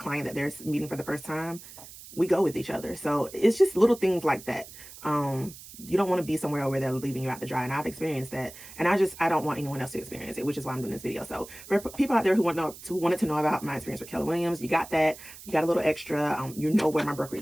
that they're meeting for the first time, we go with each other. So it's just little things like that. You don't want to be somewhere where they're leaving you out to dry. And I've experienced that. And I don't want anyone else to experience it, which is why I'm doing this video. So for people out there who wanted to know about my experience with Keller Williams, you got that. You got a little extra. You know where my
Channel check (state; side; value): noise; right; hiss, 16 dB below the sound